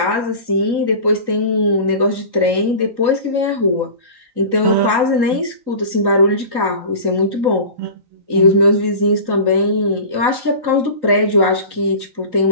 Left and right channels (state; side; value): late; left; 3.9 ms